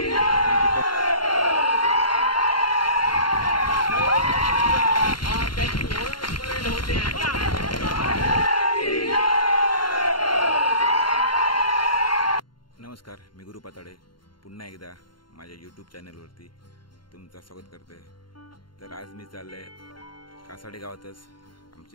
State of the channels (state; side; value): late; right; 0.72 ms